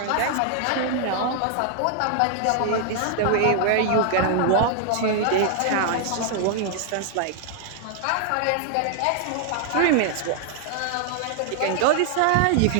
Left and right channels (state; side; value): different; both; correlation 0.00